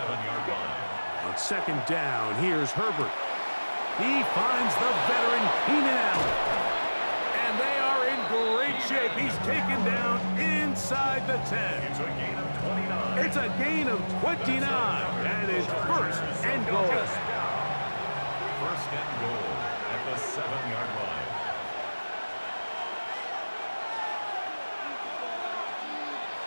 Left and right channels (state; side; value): inverted; both; correlation -1.00